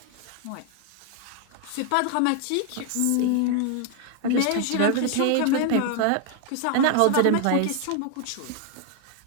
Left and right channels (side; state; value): both; different; correlation 0.00